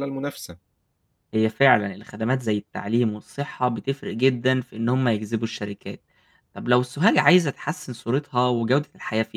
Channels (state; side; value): identical; both; correlation 1.00